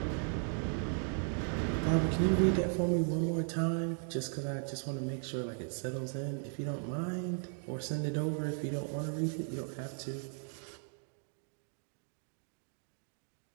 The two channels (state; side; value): silent; left; 53 dB below the other